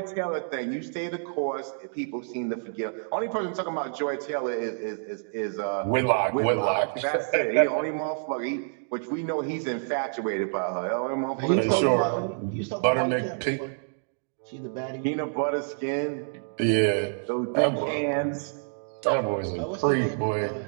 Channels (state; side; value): silent; left; digital silence